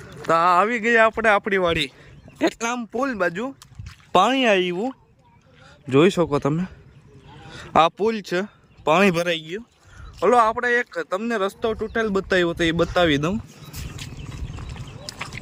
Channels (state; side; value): identical; both; correlation 1.00